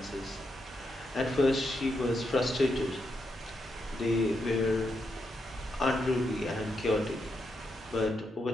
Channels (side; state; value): both; normal; correlation 0.82